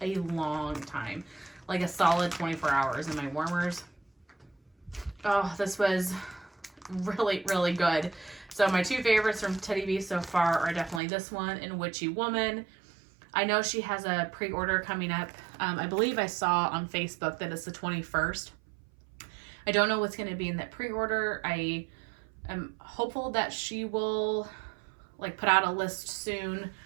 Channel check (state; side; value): drops out; left; at 11.0 s